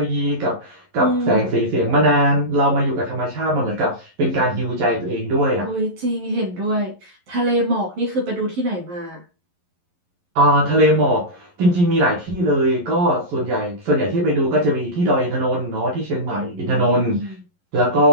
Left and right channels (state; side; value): late; left; 11 ms